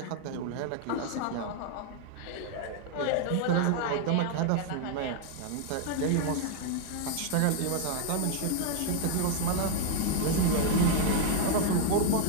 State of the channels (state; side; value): different; both; correlation 0.00